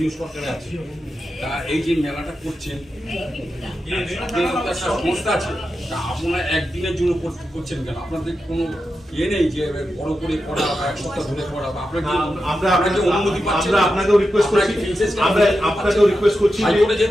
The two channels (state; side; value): normal; both; correlation 0.90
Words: সরকারে আছে, তা এই যে মেলাটা করছেন, একটা সংস্থা আছে, তা আপনারা একদিনের জন্য করছেন কেন? আপনাদের কোনো ইয়ে নেই যে বড় করে করা বা এক সপ্তাহ ধরে করা, বা আপনাকে অনুমতি পাচ্ছেন? আপনাকেও রিকোয়েস্ট করছি, আপনাকেও রিকোয়েস্ট করছি হাইকোর্টে